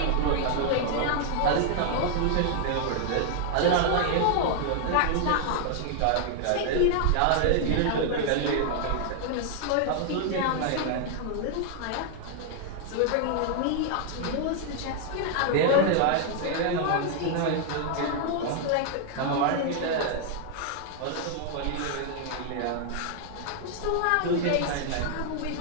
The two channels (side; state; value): both; different; correlation 0.00